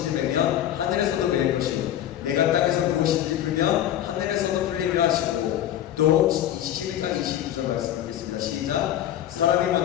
매면 하늘에서도 매일 것이고 내가 땅에서 무엇인지 풀면 하늘에서도 풀리리라 하시고 또 12장 22절 말씀드리겠습니다. 시작. 사람이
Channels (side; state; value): right; quieter; 11.6 dB